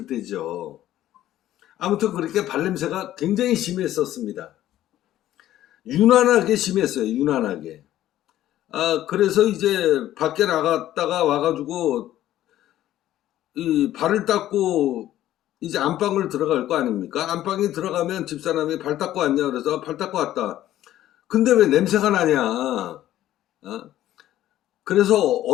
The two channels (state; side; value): quieter; right; 13.2 dB